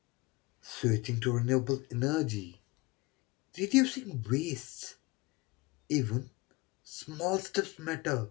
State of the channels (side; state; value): right; quieter; 23.6 dB